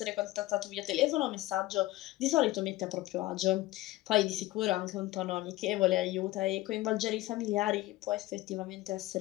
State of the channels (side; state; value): right; quieter; 17.9 dB